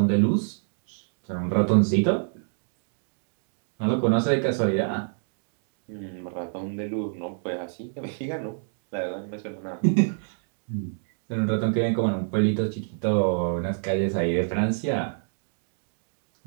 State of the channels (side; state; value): left; silent; digital silence